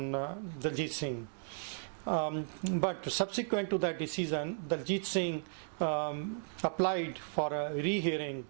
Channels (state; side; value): silent; left; 54 dB below the other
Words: Daljit Singh. But subsequent to that decision, Daljit Singh applied for a rehearing